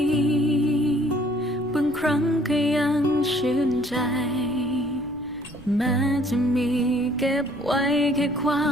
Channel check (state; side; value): noise; left; rumble, 21 dB below the sound